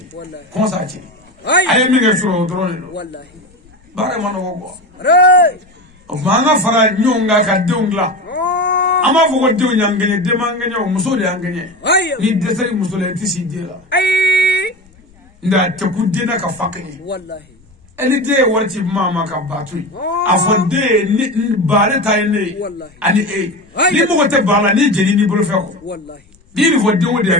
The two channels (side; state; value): left; noise; rumble, 30 dB below the sound